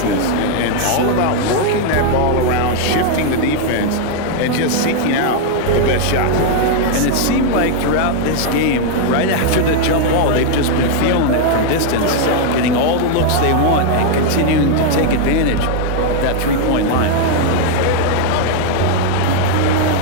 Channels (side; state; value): both; different; correlation 0.00